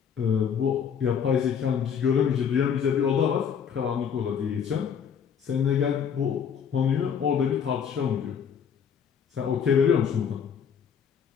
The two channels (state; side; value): quieter; right; 7.4 dB